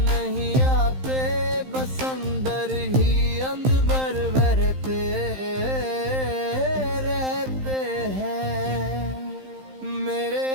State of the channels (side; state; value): left; late; 15 ms